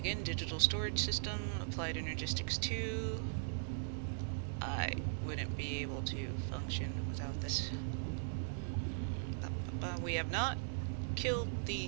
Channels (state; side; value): silent; left; 52 dB below the other